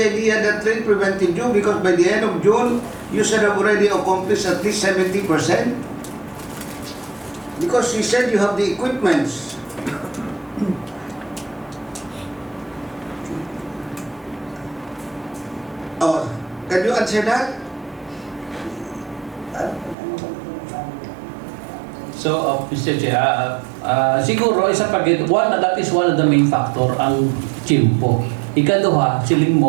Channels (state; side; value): drops out; left; at 20.0 s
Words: that rain prevented you, because by the end of June, you should have already accomplished at least 70%. Because you said you have the equipments. Oh, can you answer that? So, Mr. Chair, siguro isa pa that is one of the main factor ang chimpo. Ikaduha, siling